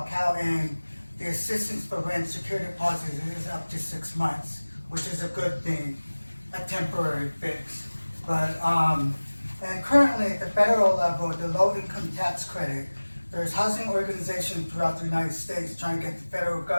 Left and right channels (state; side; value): inverted; both; correlation -1.00